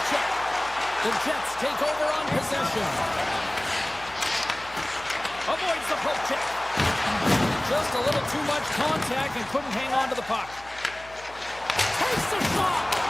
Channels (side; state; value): left; noise; hum, 21 dB below the sound